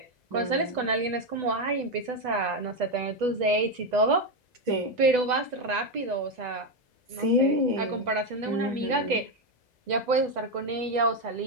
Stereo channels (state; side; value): late; left; 2.0 ms